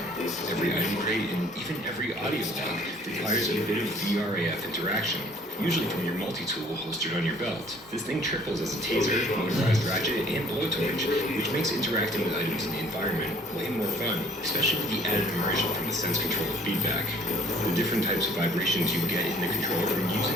Every item crate and even every audio log requires a bit of VRAF interaction, usually from your multi-tool holstered on your belt. This thing triples as a taser, motorized ratchet, and blowtorch, which makes interacting with items in the environment way more fun, especially with the added immersion from the sense control feedback. The different types of vibrations you get in the controller from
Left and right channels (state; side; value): normal; both; correlation 0.56